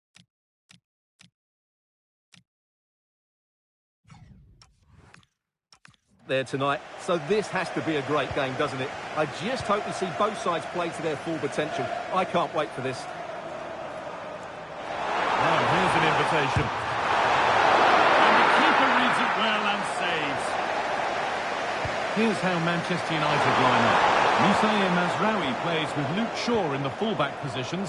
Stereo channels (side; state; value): both; identical; correlation 1.00